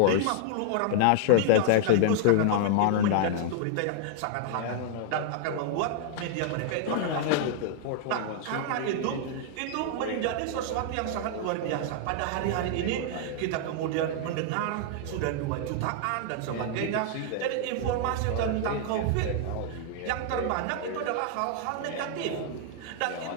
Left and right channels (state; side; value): different; both; correlation 0.00